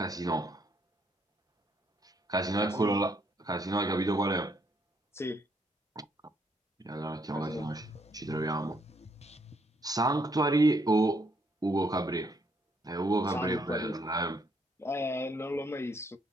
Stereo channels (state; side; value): normal; both; correlation 0.71